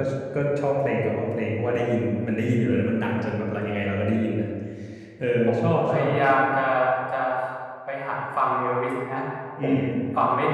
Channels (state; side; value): identical; both; correlation 1.00